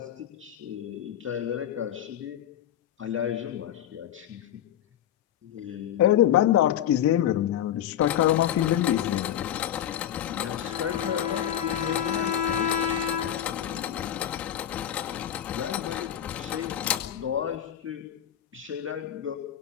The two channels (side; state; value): right; quieter; 10.8 dB